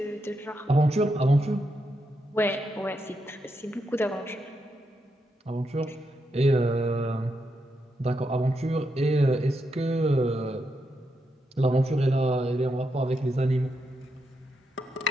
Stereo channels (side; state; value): both; normal; correlation 0.83